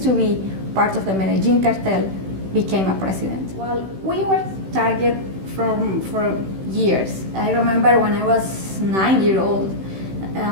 to be part of the Medellin cartel became a president. Well, we were target for years. I remember when I was 9 years old,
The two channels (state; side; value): late; left; 16 ms